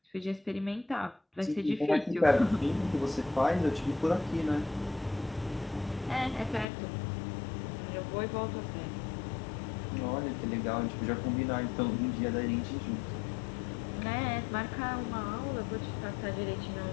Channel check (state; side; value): drops out; right; at 6.7 s